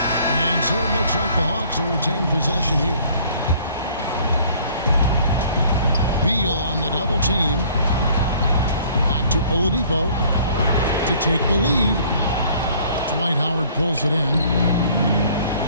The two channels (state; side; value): inverted; both; correlation -0.56